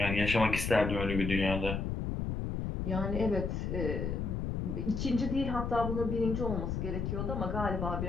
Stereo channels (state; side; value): noise; left; rumble, 2 dB below the sound